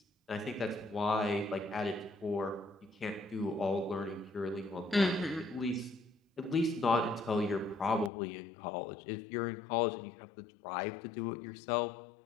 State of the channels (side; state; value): right; drops out; at 8.1 s